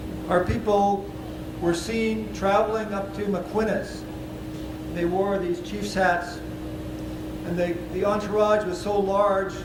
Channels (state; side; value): identical; both; correlation 1.00